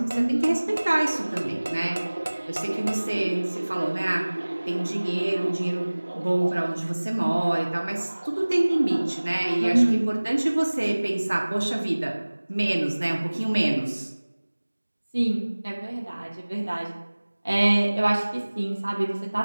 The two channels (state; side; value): inverted; both; correlation -1.00